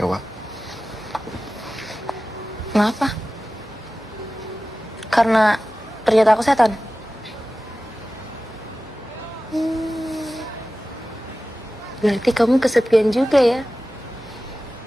Kenapa? Karena ternyata aku setan. Berarti kamu kesepian juga ya?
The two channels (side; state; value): both; normal; correlation 0.95